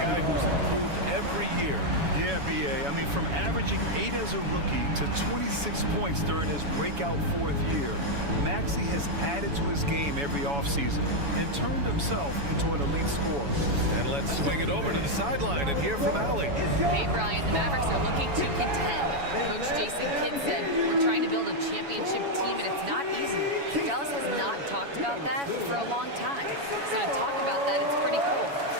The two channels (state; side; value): late; left; 7.1 ms